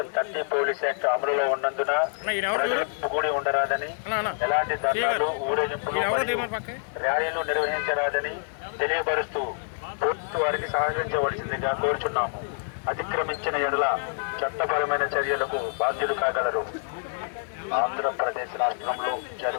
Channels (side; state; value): right; silent; digital silence